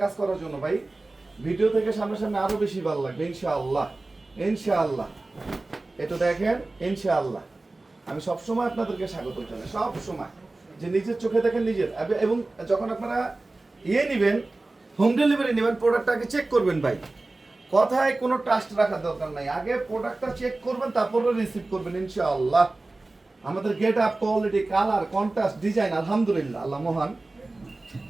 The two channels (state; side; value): quieter; left; 3.1 dB